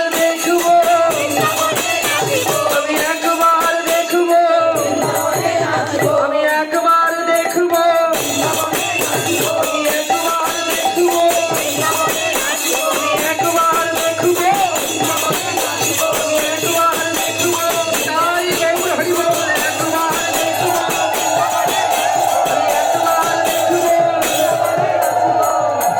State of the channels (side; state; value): both; identical; correlation 1.00